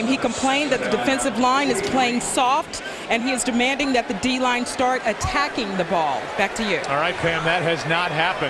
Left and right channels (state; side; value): identical; both; correlation 1.00